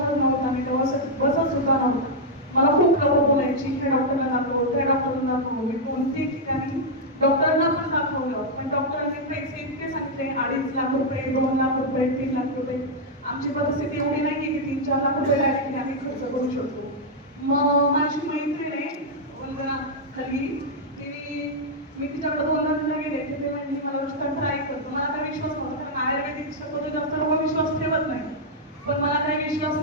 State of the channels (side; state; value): both; normal; correlation -0.04